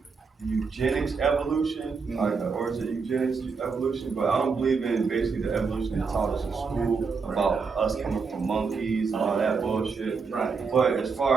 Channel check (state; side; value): quieter; left; 5.1 dB